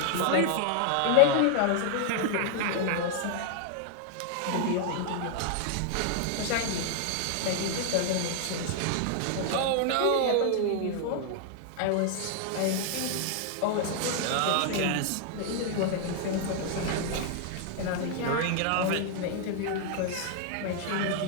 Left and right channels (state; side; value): different; both; correlation 0.00